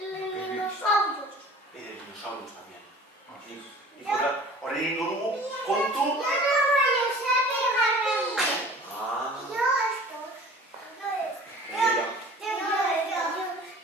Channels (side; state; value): both; normal; correlation 0.45